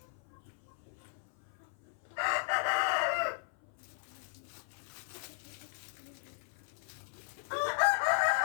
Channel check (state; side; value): silent; right; 53 dB below the other